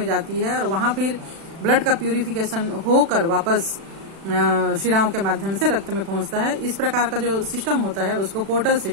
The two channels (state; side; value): late; left; 36 ms